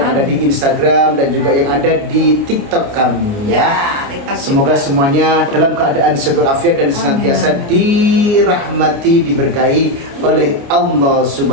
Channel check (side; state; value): left; late; 29 ms